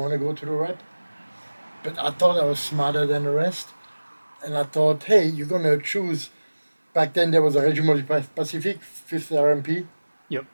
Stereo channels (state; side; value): inverted; both; correlation -1.00